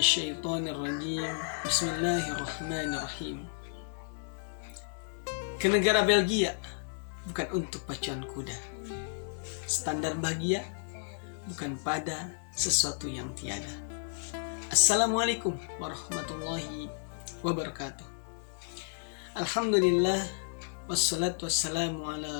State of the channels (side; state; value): right; silent; digital silence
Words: rajim. Bismillahirrahmanirrahim. Ke negara Belgia bukan untuk pacuan kuda. Standar bahagia bukan pada sesuatu yang tiada. Assalamualaikum warahmatullahi wabarakatuh. Alhamdulillah wassalatu wassalamu